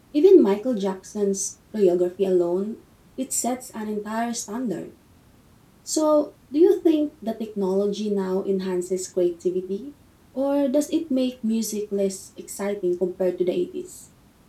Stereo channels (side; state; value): both; identical; correlation 1.00